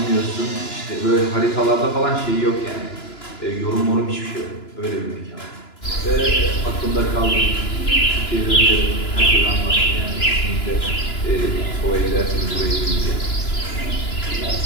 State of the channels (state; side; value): late; right; 2.9 ms